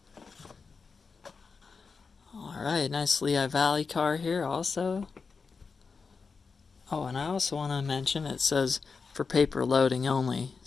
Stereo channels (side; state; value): right; quieter; 4.9 dB